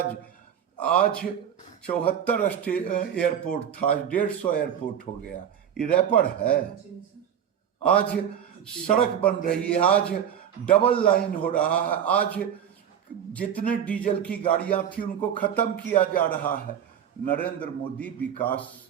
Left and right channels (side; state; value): left; quieter; 9.0 dB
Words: आज 74 एयरपोर्ट था, 150 एयरपोर्ट हो गया। ये रैपर है। आज सड़क बन रही है, आज डबल लाइन हो रहा है, आज जितने डीजल की गाड़ियां थी उनको खत्म किया जा रहा है। नरेंद्र मोदी विकास